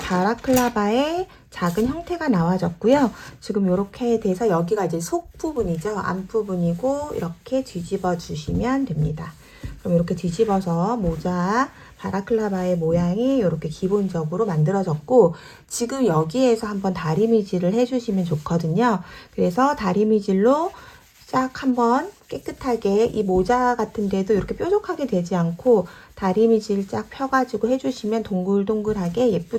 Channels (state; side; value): identical; both; correlation 1.00